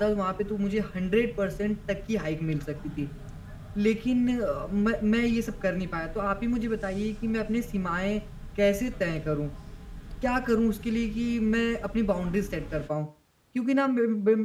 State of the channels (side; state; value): both; identical; correlation 1.00